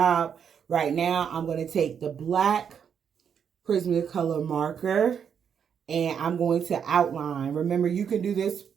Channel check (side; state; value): left; quieter; 7.6 dB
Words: Right now, I'm going to take the black Prismacolor marker, and I'm going to outline. Remember, you can do this